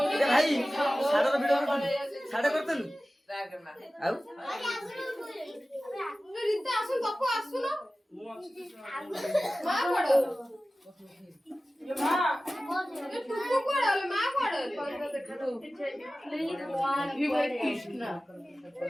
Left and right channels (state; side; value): normal; both; correlation 0.96